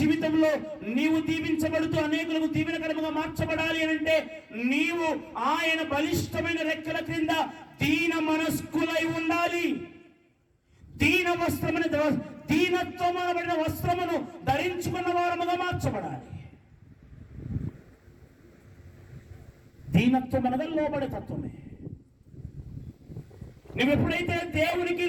నీవు దీవించబడుతూ అనేకులకు దీవెనకరముగా మార్చబడాలి అని అంటే నీవు ఆయన బలిష్టమైన రెక్కల క్రింద దీన మనస్కులై ఉండాలి. దీనత్వం అనబడిన వస్త్రమును ధరించుకున్న వారముగా మార్చబడాలి. దీనత్వం అనగా లోబడే తత్వమే. నువ్వు ఎప్పుడైతే దేవునికి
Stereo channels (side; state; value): both; identical; correlation 1.00